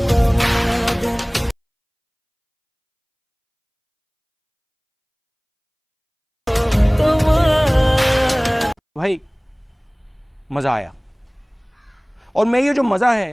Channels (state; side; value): identical; both; correlation 1.00